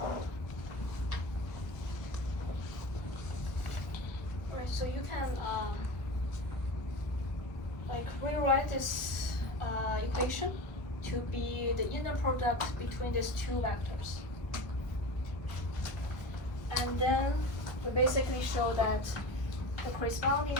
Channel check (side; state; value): right; late; 1.1 ms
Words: Right, so you can like rewrite this equation to be the inner product between these two vectors. And then we basically show that the corresponding